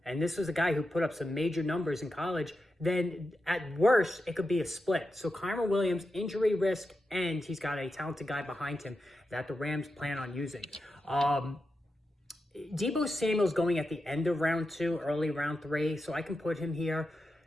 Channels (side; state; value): both; normal; correlation 0.89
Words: and this was a guy who put up some major numbers in college, then at worst, it could be a split. So Kyren Williams, injury risk, and he's got a talented guy behind him that the Rams plan on using. Deebo Samuel's going at the end of round two, early round three, so I can put him here.